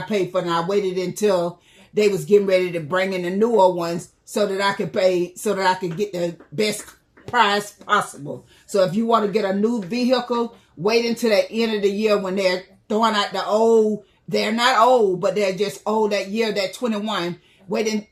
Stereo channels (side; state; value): both; identical; correlation 1.00